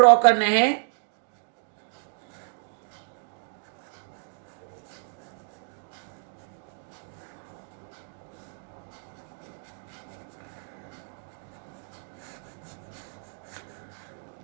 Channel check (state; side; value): silent; left; digital silence